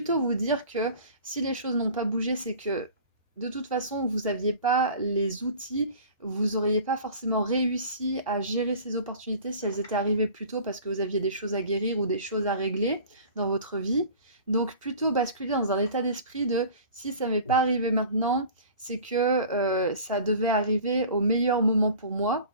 vous dire que si les choses n'ont pas bougé, c'est que de toute façon vous n'aviez pas les outils, vous auriez pas forcément réussi à gérer ces opportunités si elles étaient arrivées plus tôt parce que vous aviez des choses à guérir ou des choses à régler dans votre vie. Donc plutôt basculer dans un état d'esprit de si ça m'est pas arrivé maintenant, c'est que ça devait arriver au meilleur moment pour moi.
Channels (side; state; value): both; inverted; correlation -0.43